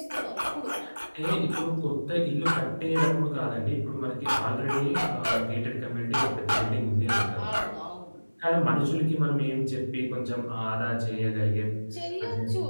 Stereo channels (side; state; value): both; inverted; correlation -1.00